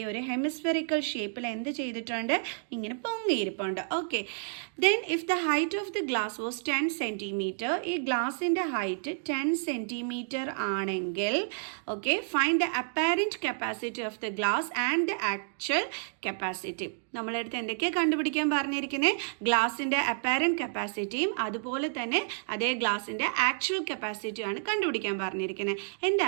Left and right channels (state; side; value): silent; left; digital silence